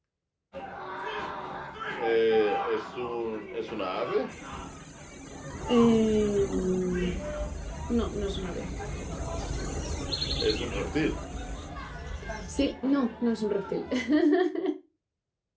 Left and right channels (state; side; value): identical; both; correlation 1.00